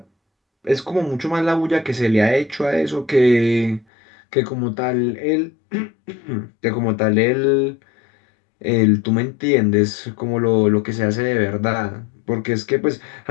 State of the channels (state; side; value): drops out; right; at 3.9 s